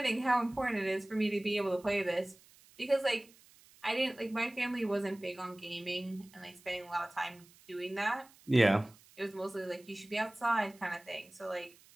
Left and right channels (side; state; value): right; noise; hiss, 26 dB below the sound